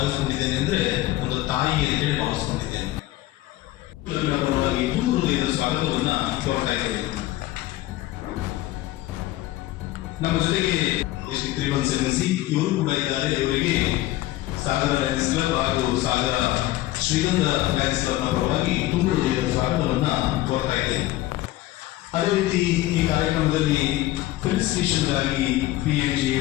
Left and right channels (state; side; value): quieter; right; 16.3 dB